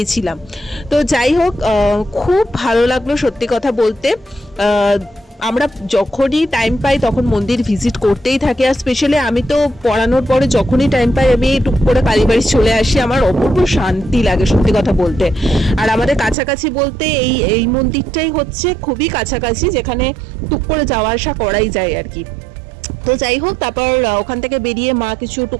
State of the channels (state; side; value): drops out; left; at 16.4 s